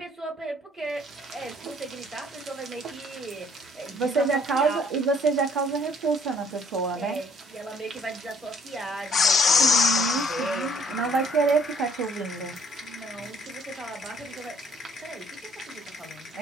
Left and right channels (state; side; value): normal; both; correlation 0.61